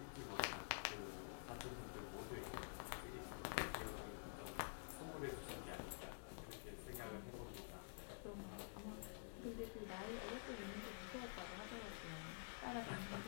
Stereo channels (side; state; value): right; silent; digital silence